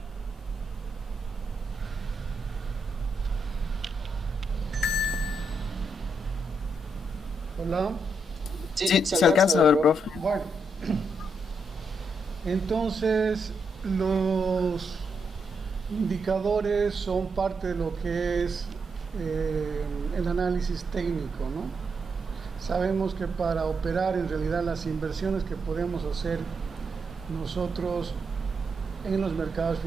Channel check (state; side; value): normal; both; correlation 0.81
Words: Hola. Sí, se alcanza a ver, profe. Bueno, entonces los indicadores son parte de lo que es el análisis técnico, ¿no? Sabemos que para operar en realidad las inversiones que podemos hacer nosotros en los mercados